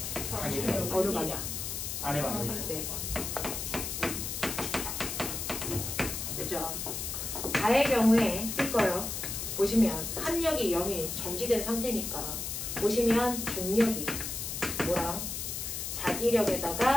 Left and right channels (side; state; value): left; noise; hiss, 4 dB below the sound